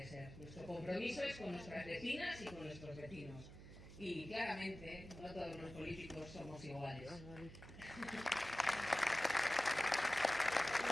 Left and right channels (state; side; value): noise; right; hum, 14 dB below the sound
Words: ser. Nuestro compromiso es con nuestras vecinas y con nuestros vecinos. Y claramente no todos los políticos somos iguales.